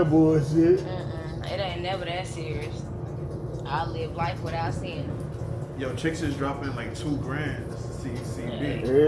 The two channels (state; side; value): identical; both; correlation 1.00